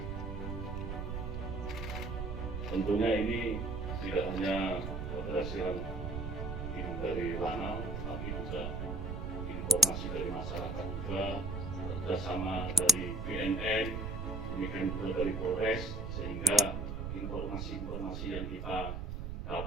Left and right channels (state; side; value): noise; right; rumble, 4 dB below the sound